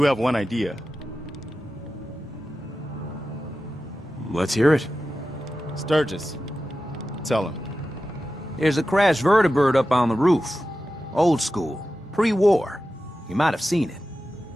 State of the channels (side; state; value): both; normal; correlation 0.93